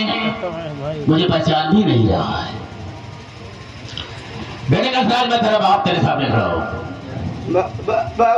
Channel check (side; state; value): both; identical; correlation 1.00